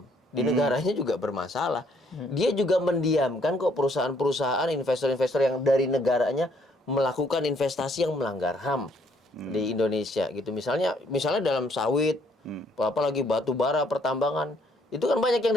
Di negaranya juga bermasalah. Dia juga mendiamkan kok perusahaan-perusahaan, investor-investor yang dari negaranya melakukan investasi yang melanggar HAM di Indonesia gitu. Misalnya dalam sawit, apalagi batu bara, pertambangan. Itu kan banyak yang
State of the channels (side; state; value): both; normal; correlation 0.66